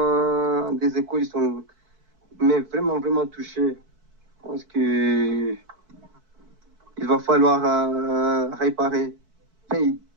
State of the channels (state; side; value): late; left; 4.6 ms